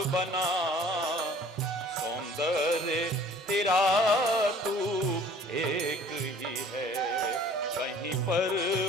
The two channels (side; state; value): both; normal; correlation 0.51